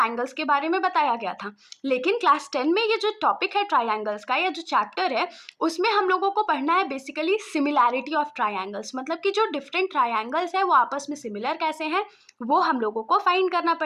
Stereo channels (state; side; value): identical; both; correlation 1.00